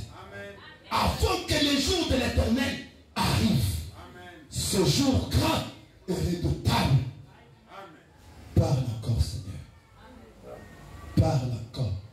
afin que le jour de l'Éternel arrive. Ce jour grand et redoutable. Parle encore, Seigneur. Parle encore.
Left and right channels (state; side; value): identical; both; correlation 1.00